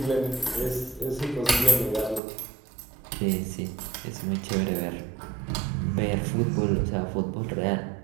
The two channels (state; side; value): drops out; left; at 2.2 s